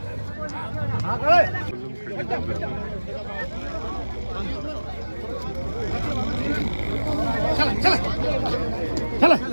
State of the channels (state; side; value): inverted; both; correlation -1.00